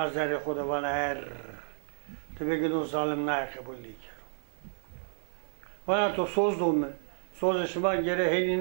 خدا bana her tabi ki o zalim ne kabul değil bana to sozdum söz şuma gere heli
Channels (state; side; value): silent; left; 57 dB below the other